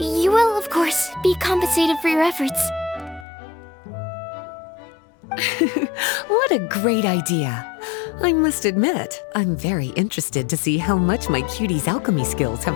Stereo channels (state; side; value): drops out; right; at 3.2 s